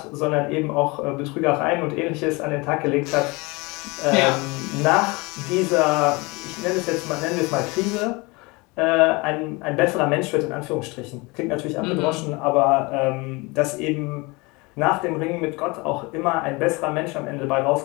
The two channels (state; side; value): quieter; right; 25.7 dB